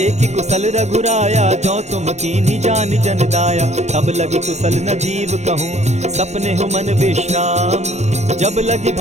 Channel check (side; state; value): left; late; 0.33 ms